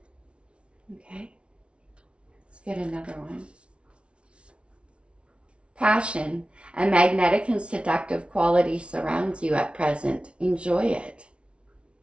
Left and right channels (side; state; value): left; late; 0.059 ms